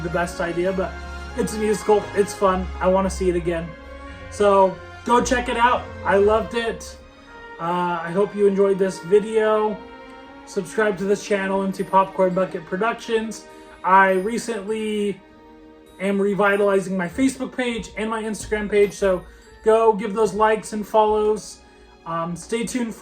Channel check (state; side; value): identical; both; correlation 1.00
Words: best idea, but it's a musical, it's fun, I want to see it again. So go check it out. I loved it. I hope you enjoyed this video. Subscribe to this channel, Empty Popcorn Bucket Productions. I recently am revitalizing my Facebook page and my Instagram page, so go give those likes and follows. Stay tuned